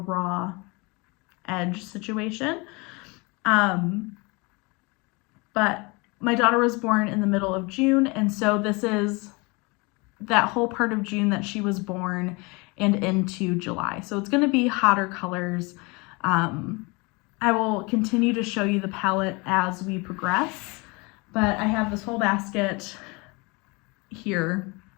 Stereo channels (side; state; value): right; quieter; 27.4 dB